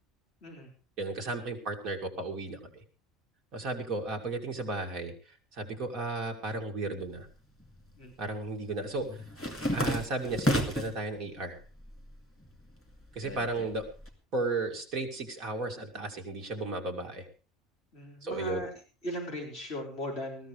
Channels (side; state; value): both; normal; correlation 0.35